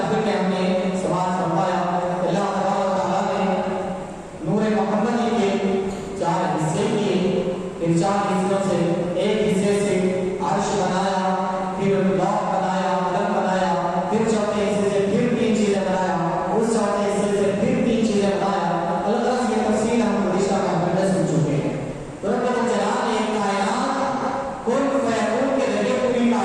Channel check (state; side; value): identical; both; correlation 1.00